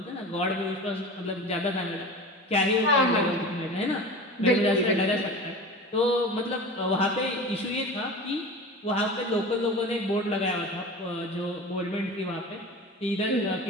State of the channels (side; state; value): both; normal; correlation 0.34